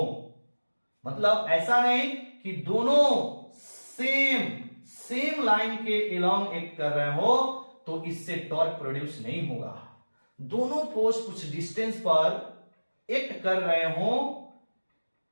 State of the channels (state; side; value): inverted; both; correlation -1.00